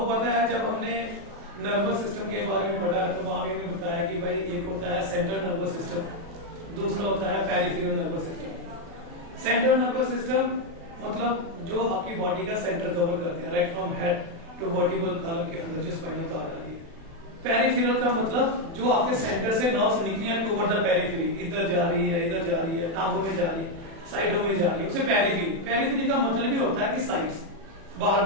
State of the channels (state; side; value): late; left; 36 ms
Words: पता है जब हमने नर्वस सिस्टम के बारे में पढ़ा तो वहां भी हमने बताया कि भाई एक होता है सेंट्रल नर्वस सिस्टम, दूसरा होता है peripheral nervous system. Central nervous system मतलब जो आपकी बॉडी का सेंटर कवर करते हैं, right from head to vertebral column के अंदर जो स्पाइनल कॉर्ड आ रही है। पेरिफेरल का मतलब जो आपके सेंटर से नर्व्स निकली है टुवर्ड द पेरिफेरी, इधर जा रही है, इधर जा रही है, टांगों में जा रही है, साइडों में जा रही है, उसे पेरिफेरी। पेरिफेरी का मतलब भी होता है कि साइड्स, बाहर